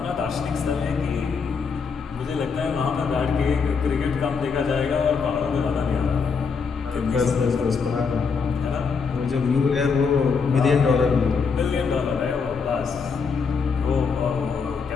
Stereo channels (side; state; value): right; quieter; 5.5 dB